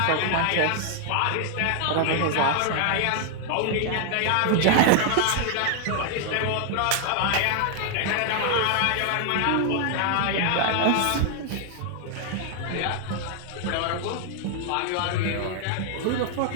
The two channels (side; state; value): both; different; correlation 0.00